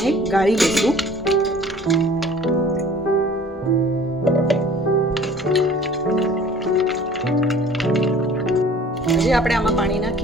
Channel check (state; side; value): normal; both; correlation 0.50